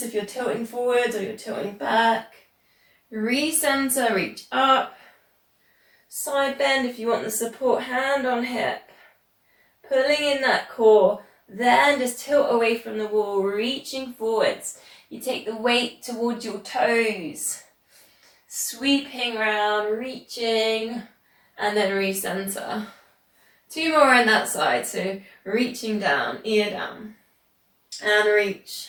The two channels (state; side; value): identical; both; correlation 1.00